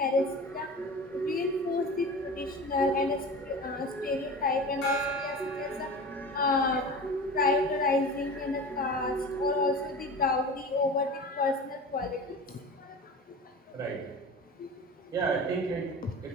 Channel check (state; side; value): normal; both; correlation 0.33